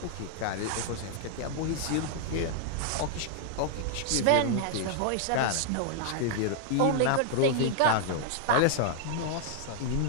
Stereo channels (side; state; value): both; different; correlation 0.00